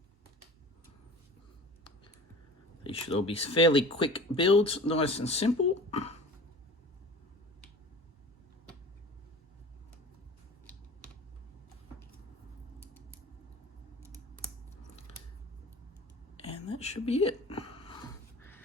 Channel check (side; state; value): both; normal; correlation 0.39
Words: These should all be fairly quick builds, nice and simple. And that should be it.